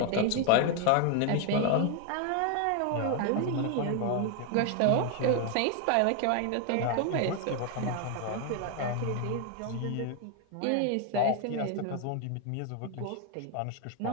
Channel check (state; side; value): different; both; correlation 0.00